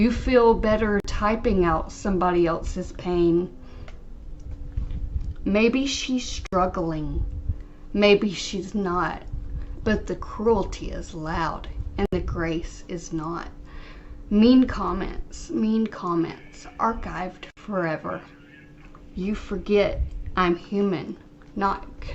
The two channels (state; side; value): identical; both; correlation 1.00